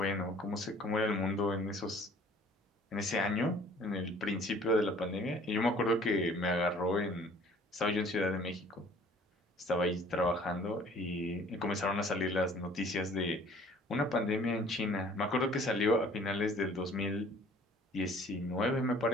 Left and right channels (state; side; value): normal; both; correlation 0.53